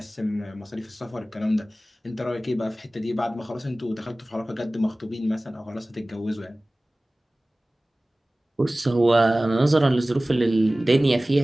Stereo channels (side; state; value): both; normal; correlation 0.98